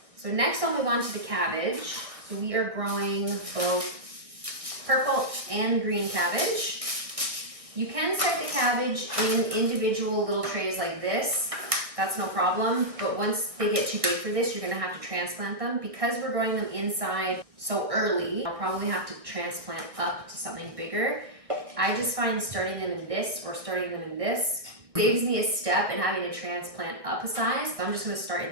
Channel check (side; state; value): left; late; 1.6 ms